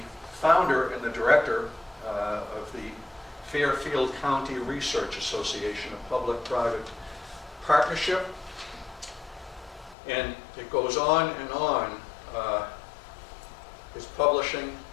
founder and the director of the Fairfield County Research Association, a public-private partnership. And it goes on and on. His publishing,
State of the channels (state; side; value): drops out; right; at 10.0 s